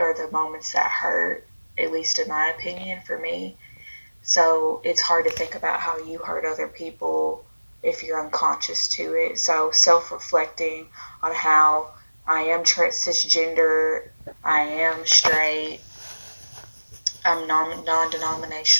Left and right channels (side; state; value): both; inverted; correlation -1.00